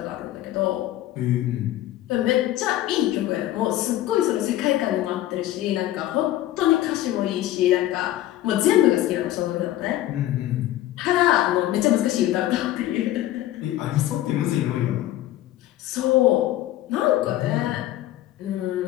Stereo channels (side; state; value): right; quieter; 14.2 dB